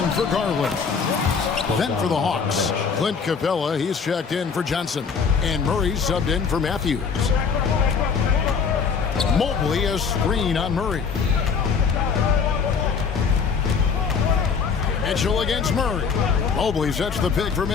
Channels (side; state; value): right; quieter; 5.9 dB